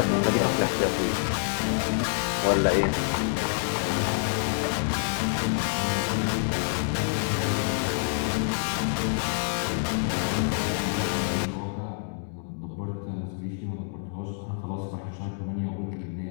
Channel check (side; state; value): right; silent; digital silence